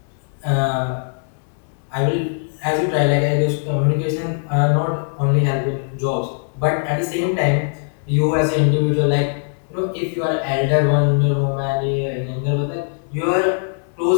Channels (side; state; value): right; silent; 66 dB below the other